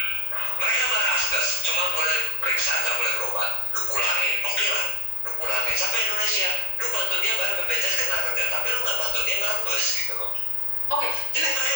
Mereka marah asgas, cuma boleh periksa, nggak boleh berobat. Lu pulangin, oke lah, lu pulangin sampai Indonesia, lu bantu dia bayar BPJS Ketenagakerjaan, tapi lu nggak bantu dia ngerembes gitu loh. Oke. Jadi mereka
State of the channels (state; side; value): late; left; 1.9 ms